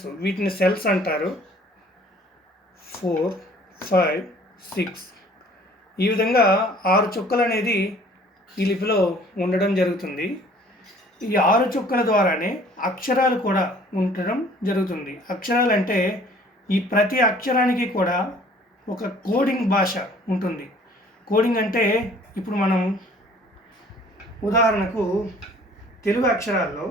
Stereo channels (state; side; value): normal; both; correlation 0.54